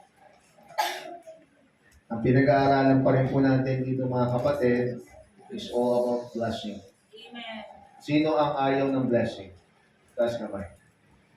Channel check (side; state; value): both; identical; correlation 1.00